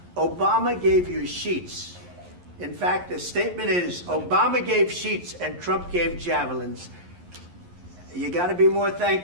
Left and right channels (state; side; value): late; left; 11 ms